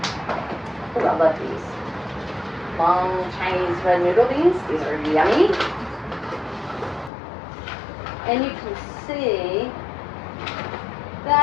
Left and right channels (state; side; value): drops out; right; at 7.1 s